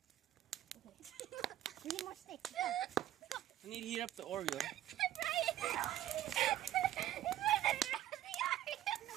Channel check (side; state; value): left; quieter; 12.9 dB